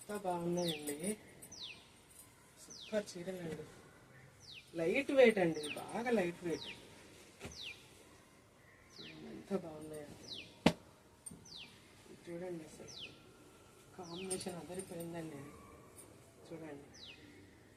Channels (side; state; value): both; identical; correlation 1.00